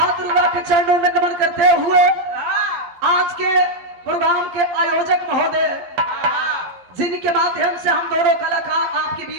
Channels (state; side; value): late; left; 12 ms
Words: दुर्गा के चरणों में नमन करते हुए आज के प्रोग्राम के आयोजक महोदय, जिनके माध्यम से हम दोनों कलाकार आपके